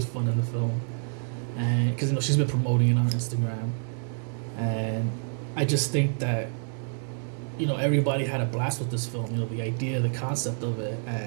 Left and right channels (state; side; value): silent; left; 59 dB below the other